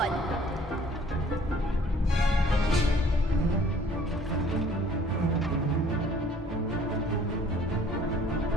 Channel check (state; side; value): normal; both; correlation 0.55